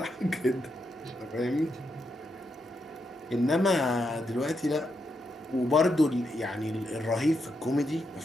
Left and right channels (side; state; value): both; normal; correlation 0.82